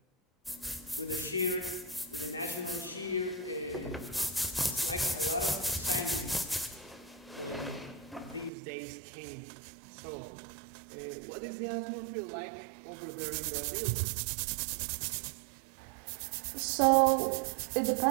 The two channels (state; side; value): drops out; left; at 8.5 s